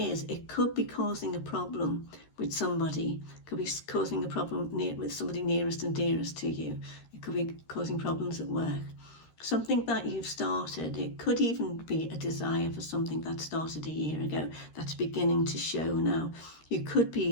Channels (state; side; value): late; right; 13 ms